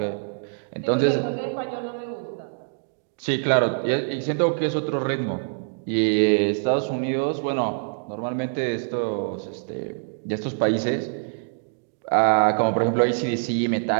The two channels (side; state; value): left; silent; digital silence